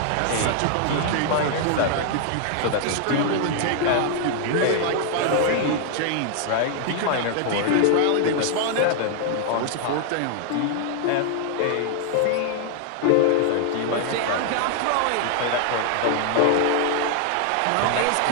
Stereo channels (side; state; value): both; different; correlation 0.00